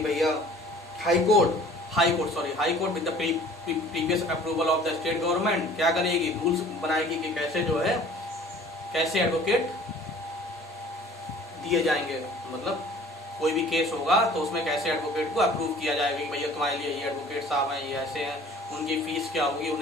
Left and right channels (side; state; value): both; normal; correlation 0.49